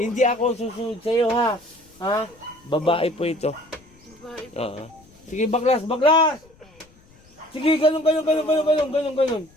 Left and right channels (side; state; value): left; noise; rumble, 28 dB below the sound